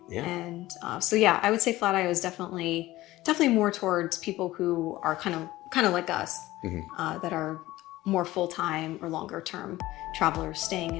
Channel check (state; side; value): quieter; right; 17.1 dB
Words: And so yeah, I would say Flatio is definitely more towards people who are kind of like us, that are more full-time or longer term travelers